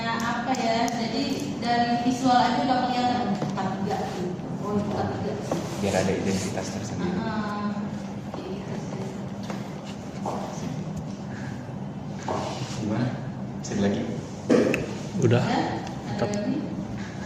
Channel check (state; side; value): identical; both; correlation 1.00